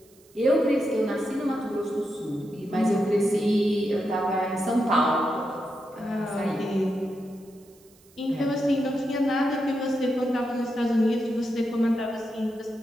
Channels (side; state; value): right; noise; hiss, 29 dB below the sound